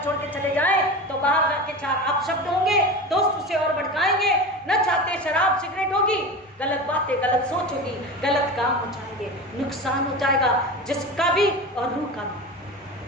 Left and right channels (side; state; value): both; normal; correlation 0.28